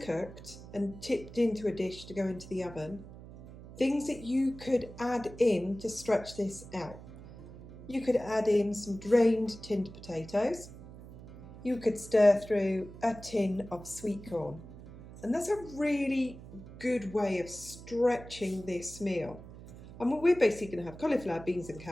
cooked and tipped into a dish to go into the oven, things that you could add in to stretch this out. You could add in some drained tinned potatoes. You could stir through a tin of sweet corn. And that's a really good way of stretching this meal. And we're basically going to have cauliflower, beans and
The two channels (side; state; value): right; noise; hum, 16 dB below the sound